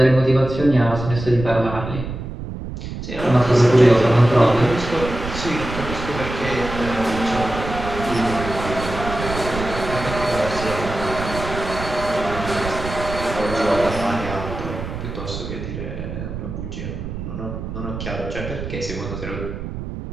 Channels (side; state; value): right; noise; rumble, 7 dB below the sound